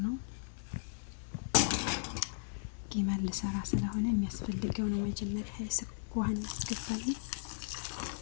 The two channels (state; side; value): silent; right; digital silence